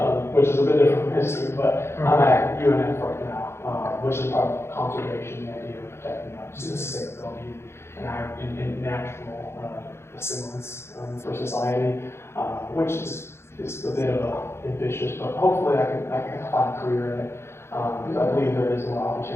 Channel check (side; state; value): right; late; 0.12 ms